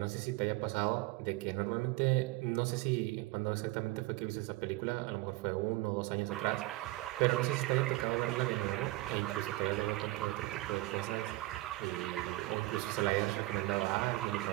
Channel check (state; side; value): quieter; left; 19.7 dB